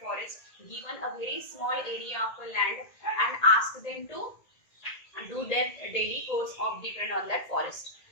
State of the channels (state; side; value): late; right; 1.8 ms